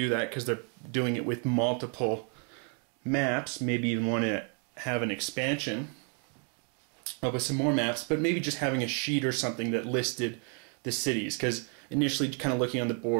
that because they're doing it with multiple maps. Maybe even want to have an expansion with some more maps, but maybe just having a sheet or something that listed the cities, because initially kind of looking on the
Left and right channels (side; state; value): left; quieter; 39.8 dB